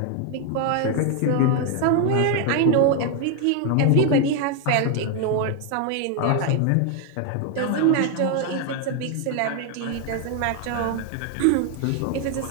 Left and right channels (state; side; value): different; both; correlation 0.01